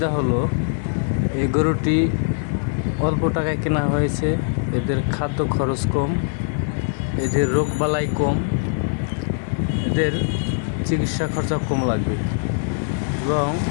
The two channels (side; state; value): right; silent; 64 dB below the other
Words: হলো, এই গরুটি অল্প টাকায় কেনা হয়েছে, এদের খাদ্য খরচ কম, এদের রোগবালাই কম, এদের চিকিৎসা খরচা কম লাগবে এবং